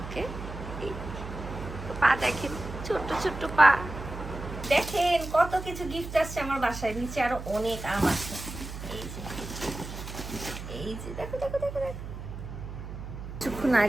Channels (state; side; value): noise; right; hum, 9 dB below the sound